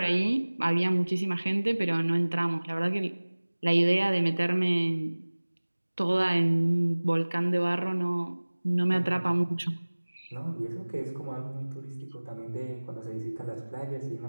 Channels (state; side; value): inverted; both; correlation -1.00